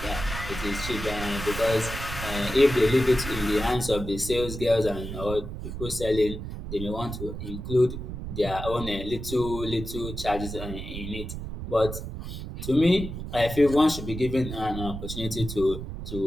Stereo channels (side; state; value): right; noise; rumble, 7 dB below the sound